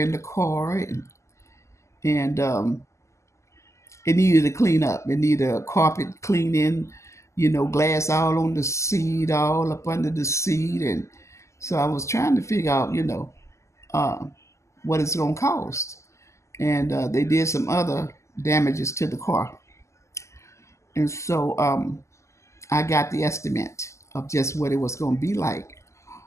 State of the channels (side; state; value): right; late; 0.14 ms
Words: in the car, and It needed to clean up. It needed a carpet cleaning, glass all on the seat, all up under the seat. And so I was trying to figure out, uh, what it's going to cost. And they did some other damages to the car. And so I got the estimate of just what it was going to be like.